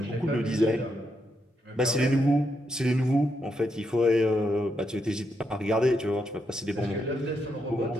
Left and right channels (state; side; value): normal; both; correlation 0.80